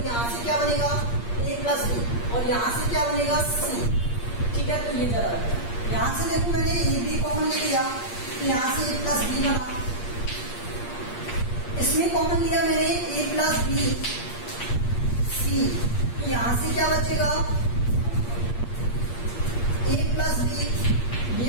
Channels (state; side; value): late; right; 8.5 ms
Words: यहाँ से क्या बनेगा ए प्लस बी और यहाँ से क्या बनेगा सी। ठीक है, तो ये जरा यहाँ से देखो मैंने ए बी कॉमन ले लिया, तो यहाँ से ए प्लस बी बना, इसमें कॉमन लिया मैंने ए प्लस बी सी, तो यहां से क्या बचेगा ए प्लस बी ये